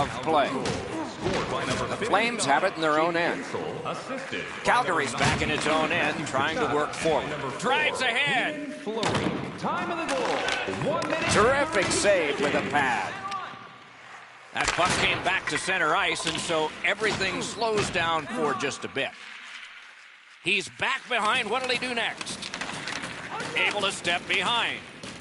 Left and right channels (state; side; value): identical; both; correlation 1.00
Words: play. The Flames have it in their own end. Calgary's back in its own end, trying to work forward. Drives ahead. Time of the goal. 1 minute. Terrific save with a pad. That puck came back to center ice, and so everything slows down for just a bit. He's back behind. What'll he do next? Able to step behind.